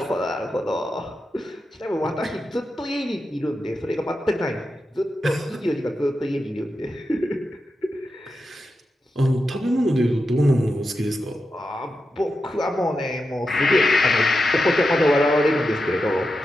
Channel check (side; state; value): both; normal; correlation 0.89